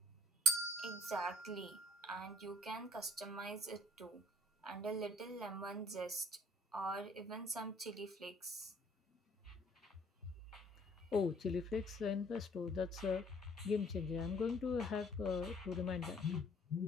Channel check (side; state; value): both; normal; correlation 0.60